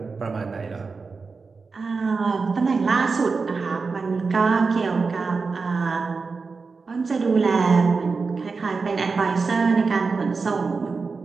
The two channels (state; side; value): quieter; left; 4.5 dB